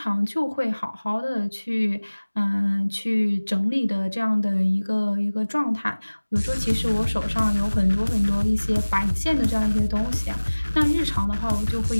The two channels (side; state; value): both; inverted; correlation -1.00